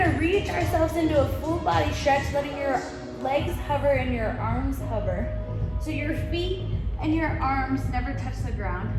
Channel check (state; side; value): identical; both; correlation 1.00